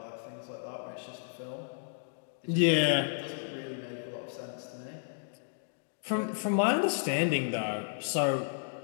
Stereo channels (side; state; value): right; silent; digital silence